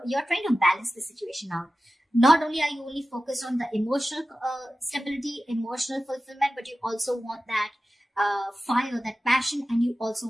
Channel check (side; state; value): both; normal; correlation 0.95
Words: you're trying to balance the situation out. Not only are you only focused on the emotional stability, emotional fulfillment, but you also want that fire, that passion, and you also